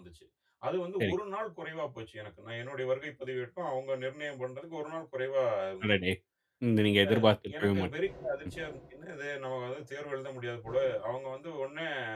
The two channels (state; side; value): identical; both; correlation 1.00